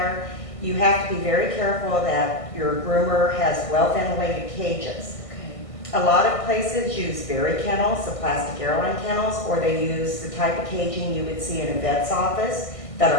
you have to be very careful that your groomer has well-ventilated cages. Okay. A lot of places use berry kennels, the plastic airline kennels, or they use the type of caging you would see in a vet's office that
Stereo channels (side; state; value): right; late; 1.6 ms